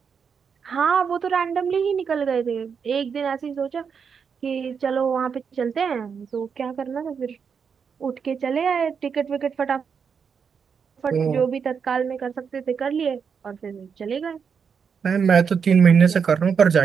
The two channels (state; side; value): quieter; left; 6.4 dB